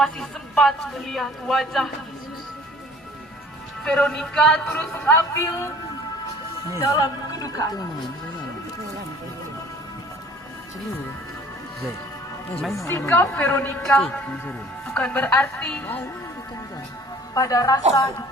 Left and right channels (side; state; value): both; normal; correlation 0.51